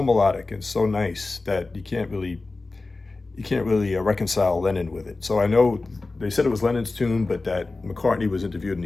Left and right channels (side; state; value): right; quieter; 3.5 dB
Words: melodic and so nice that you can't really reconcile Lennon with it. So I know they said it was Lennon's tune, but that McCartney was interviewed and